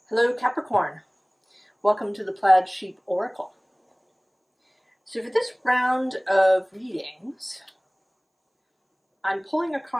Hello Capricorn, welcome to the Plaid Sheep Oracle. So for this round of readings, I'm pulling a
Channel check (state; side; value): identical; both; correlation 1.00